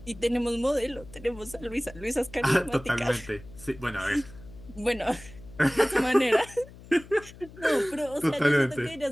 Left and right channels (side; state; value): left; noise; hum, 19 dB below the sound